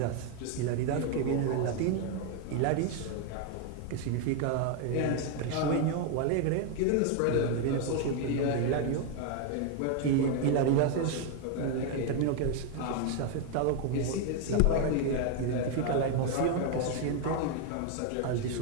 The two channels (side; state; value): both; different; correlation 0.01